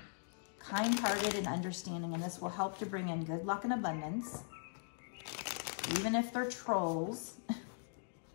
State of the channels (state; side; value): silent; right; digital silence